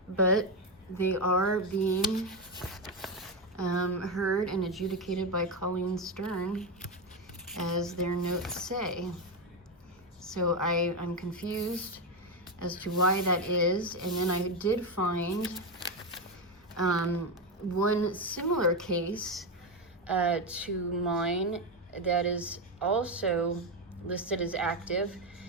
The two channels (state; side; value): normal; both; correlation 0.10